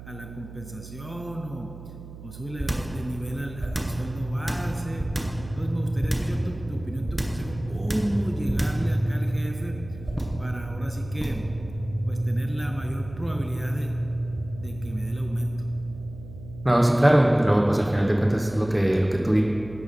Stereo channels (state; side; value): noise; right; hum, 15 dB below the sound